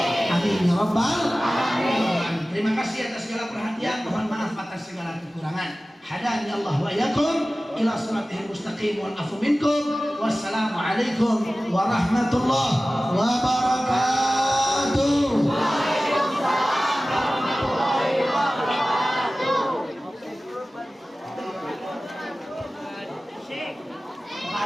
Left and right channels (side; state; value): both; normal; correlation 0.96